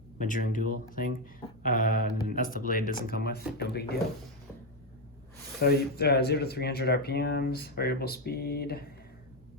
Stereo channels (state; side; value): normal; both; correlation 0.06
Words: measuring tool thing. That's the blade doesn't come with, no big deal. So 0 to 300 RPMs, variable speed,